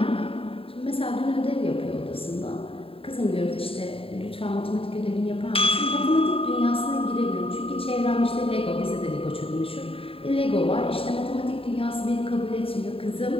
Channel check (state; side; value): late; right; 0.27 ms